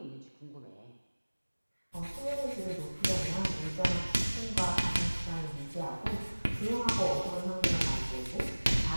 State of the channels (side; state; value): both; inverted; correlation -1.00